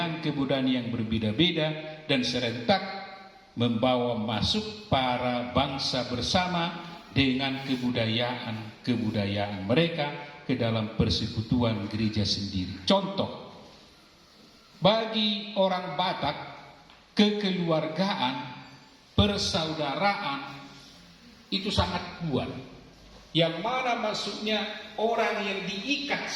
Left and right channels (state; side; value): identical; both; correlation 1.00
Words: yang berbeda-beda dan serentak membawa masuk para bangsa bersama dengan kebudayaan mereka ke dalam persekutuan gereja sendiri. Contoh, bagi orang Batak, kekeluargaan, persaudaraan itu sangat kuat. Yang mana maksudnya orang yang diikat